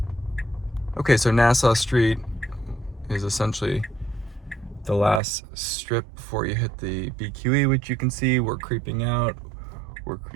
Okay, so Nassau Street is essentially the last strip before you hit the BQE, which you can see. We're creeping out.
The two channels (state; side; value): drops out; left; at 5.2 s